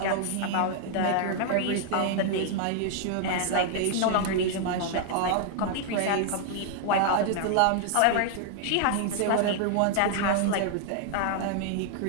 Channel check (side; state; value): both; different; correlation 0.00